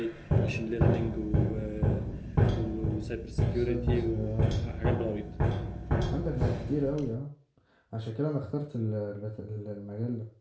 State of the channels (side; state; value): both; identical; correlation 1.00